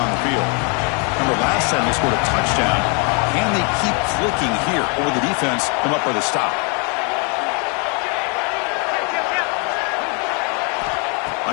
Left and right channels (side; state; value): right; quieter; 35.8 dB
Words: the field. Remember last time they scored a touchdown. Can they keep clicking here, or will the defense come up with a stop?